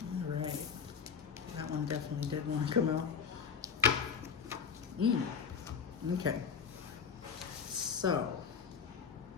All right, that one definitely did want to come out. Okay, so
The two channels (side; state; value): right; quieter; 6.7 dB